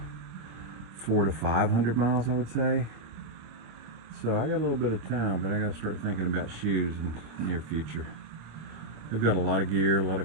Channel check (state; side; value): late; left; 26 ms